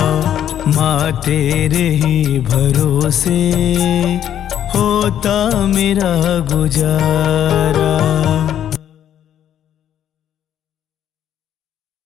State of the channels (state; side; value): quieter; right; 10.3 dB